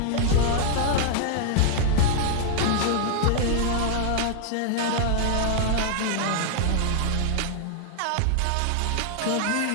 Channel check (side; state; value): both; different; correlation 0.00